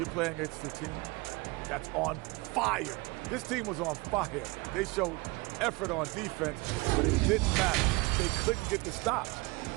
playing against a team that's on fire. This team was on fire. They showed effort on defense, but it didn't matter. They couldn't get the stops.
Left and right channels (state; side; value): quieter; left; 24.9 dB